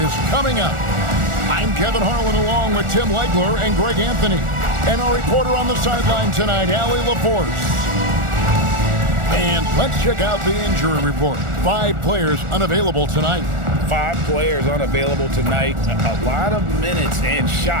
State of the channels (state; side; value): late; left; 1.4 ms